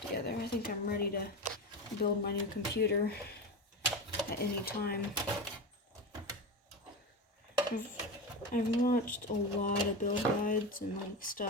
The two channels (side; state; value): both; normal; correlation 0.22